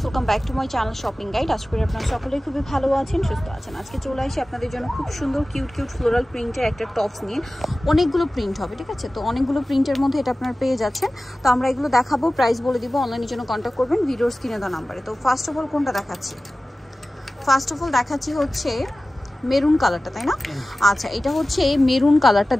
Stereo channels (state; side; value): normal; both; correlation 0.96